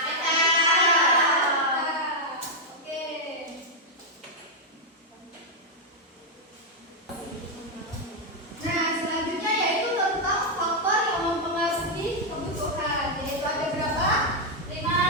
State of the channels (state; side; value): normal; both; correlation -0.01